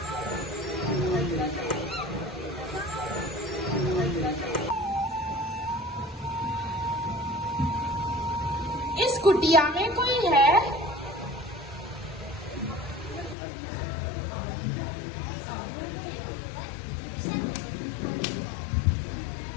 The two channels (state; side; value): drops out; right; at 13.4 s